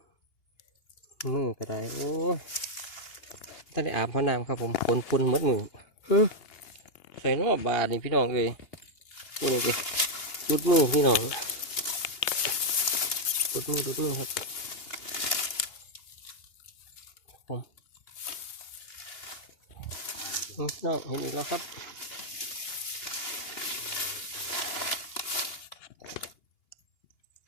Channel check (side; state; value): right; late; 2.8 ms